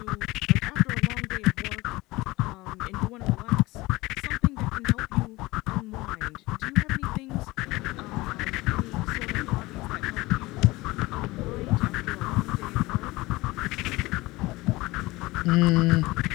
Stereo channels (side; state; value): right; quieter; 20.6 dB